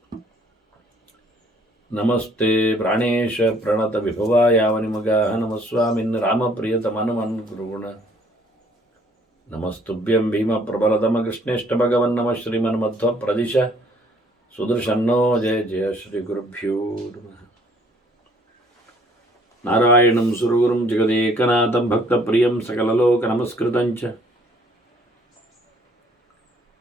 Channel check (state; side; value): normal; both; correlation 0.60